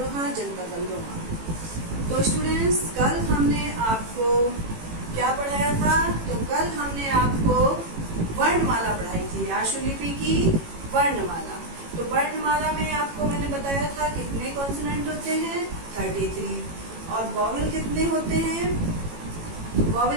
जनपद अमरोहा। तो स्टूडेंट्स, कल हमने आपको क्या पढ़ाया था? तो कल हमने आपको वर्णमाला पढ़ाई थी, आशुलिपि की वर्णमाला। तो वर्णमाला में आपको मैंने बताया था कितने कॉन्सोनेंट होते हैं, 33, और वॉवेल कितने होते हैं?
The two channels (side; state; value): left; late; 18 ms